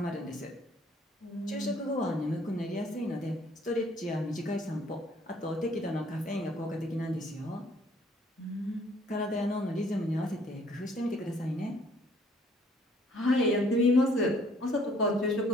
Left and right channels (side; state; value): both; normal; correlation 0.60